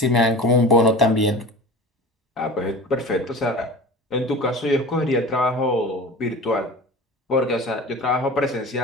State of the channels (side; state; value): both; normal; correlation 0.36